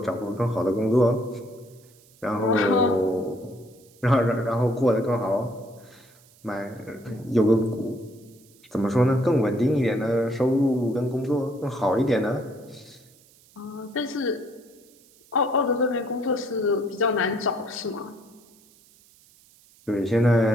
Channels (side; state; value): right; noise; hiss, 28 dB below the sound